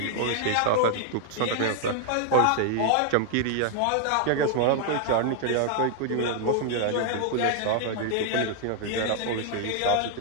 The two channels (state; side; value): different; both; correlation 0.00